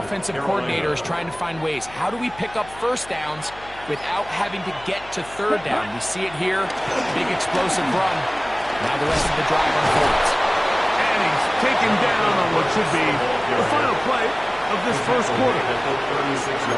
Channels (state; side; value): noise; left; hum, 20 dB below the sound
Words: coordinator is trying to find ways. How do we pick up first downs without having to get to 3rd down? We see it here. Big explosive run. Now the rest of the drive unfolds. And he's taken down on what should be the final play of this first quarter.